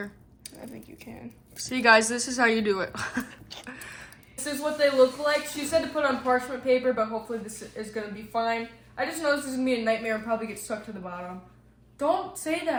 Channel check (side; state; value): both; identical; correlation 1.00